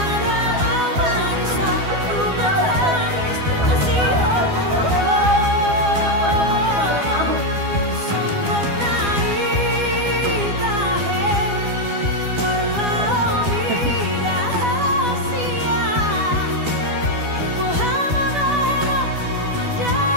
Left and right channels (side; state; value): left; late; 12 ms